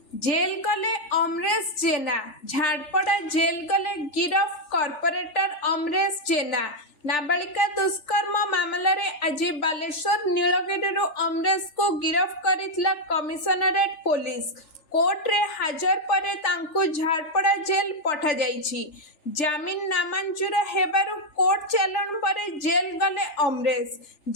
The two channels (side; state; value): right; late; 3.4 ms